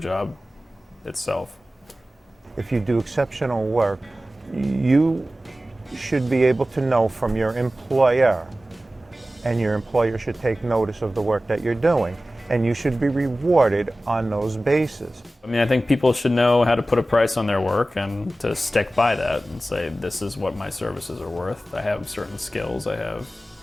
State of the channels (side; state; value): both; normal; correlation 0.96